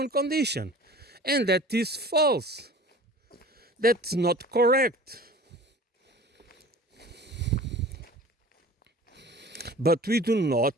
condition, and that is false. That's not correct. But we do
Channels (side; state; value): both; normal; correlation 0.43